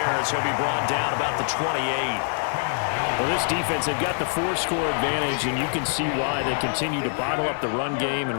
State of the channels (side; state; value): right; silent; digital silence